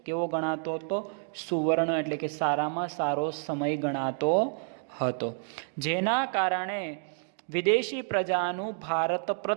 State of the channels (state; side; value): silent; left; 58 dB below the other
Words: કેવો ગણાતો હતો? સુવર્ણ એટલે કે સારામાં સારો સમય ગણાતો હતો, જેના કારણે વિદેશી પ્રજાનું ભારત